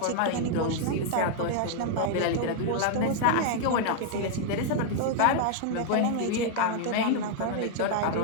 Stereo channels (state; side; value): different; both; correlation -0.01